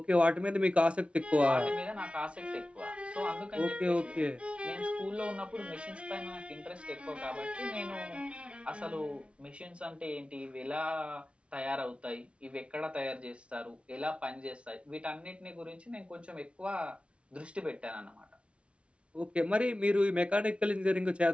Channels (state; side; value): late; left; 0.060 ms